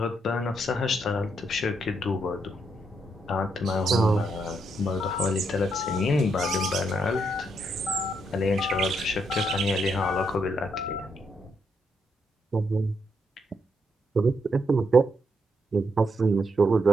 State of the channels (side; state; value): both; normal; correlation 0.77